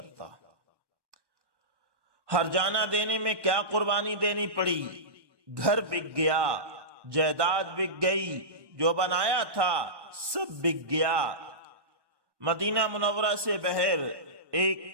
ہرجانہ دینے میں کیا قربانی دینی پڑی؟ گھر بک گیا، جائیداد بک گئی، جو بنایا تھا سب بک گیا۔ مدینہ منورہ سے بہر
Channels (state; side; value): late; left; 1.1 ms